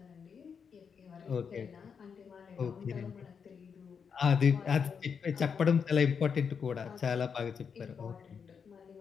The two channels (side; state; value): right; quieter; 6.4 dB